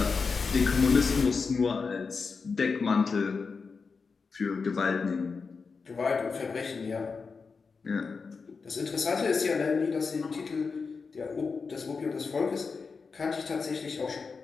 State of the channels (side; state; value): right; quieter; 4.9 dB